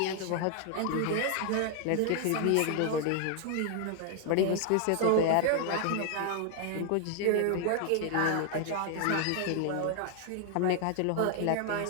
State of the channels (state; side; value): different; both; correlation 0.00